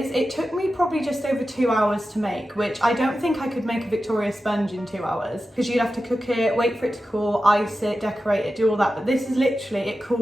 it took me probably just over 2 hours to make, which I don't think I could make a Victoria sponge in 2 hours because you'd have to cook it, wait for it to cool, ice it, decorate it, do all that. But this is literally, it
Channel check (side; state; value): both; normal; correlation 0.92